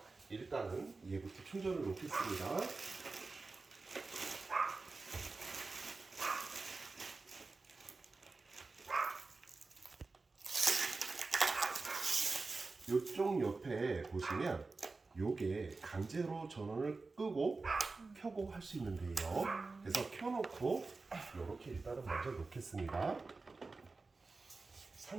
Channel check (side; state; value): left; quieter; 3.8 dB